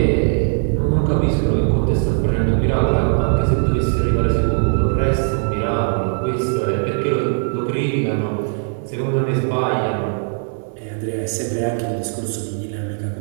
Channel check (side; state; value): left; silent; digital silence